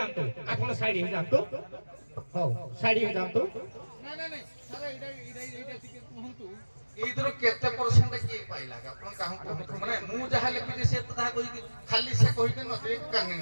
ଆପଣ ସାଇଡ ହେଇଯାଆନ୍ତୁ ହଉ ସାଇଡ ହେଇଯାଆନ୍ତୁ ଏଇଥିରୁ କେତେ ପରସେଣ୍ଟ କିଏ ପାଇଲା ଆପଣ କାହାକୁ କୁହନ୍ତୁ ମାନେ ମୁଁ ଯାହା ଲେଖିଛି ସେ ତ ତାହା କହିକି ଖାଲି ସେ କହିକି ନଦୀ କାନି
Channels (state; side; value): inverted; both; correlation -1.00